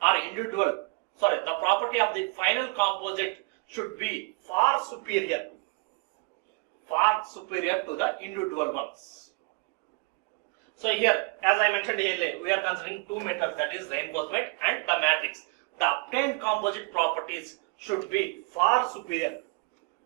are the property of the final composite should be far superior to the individual ones. So here, as I mentioned earlier, we are considering two metals, that is reinforcement and the matrix. The obtained composite properties should be far superior.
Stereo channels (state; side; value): quieter; left; 30.2 dB